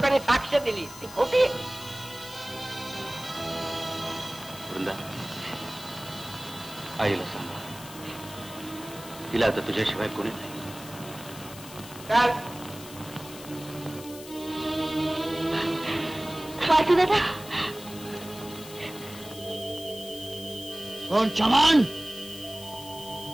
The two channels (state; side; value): noise; left; hiss, 15 dB below the sound